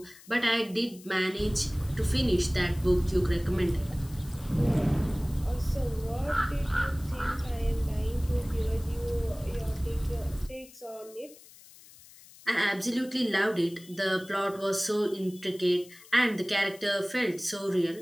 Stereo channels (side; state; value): left; noise; hiss, 22 dB below the sound